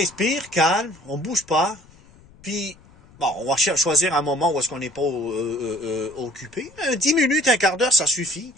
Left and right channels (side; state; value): left; noise; rumble, 26 dB below the sound